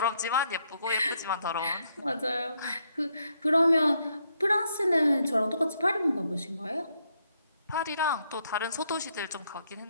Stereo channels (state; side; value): inverted; both; correlation -0.76